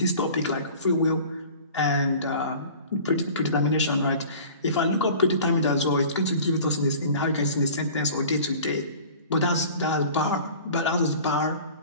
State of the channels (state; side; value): inverted; both; correlation -0.43